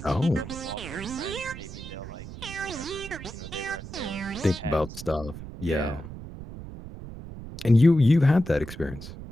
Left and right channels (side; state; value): right; noise; rumble, 12 dB below the sound